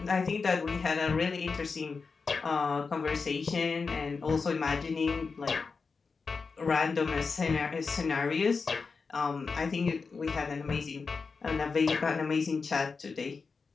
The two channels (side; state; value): right; quieter; 4.8 dB